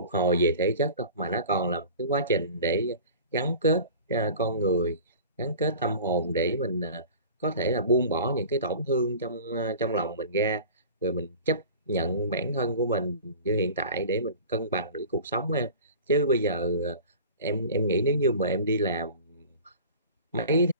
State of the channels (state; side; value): inverted; both; correlation -0.40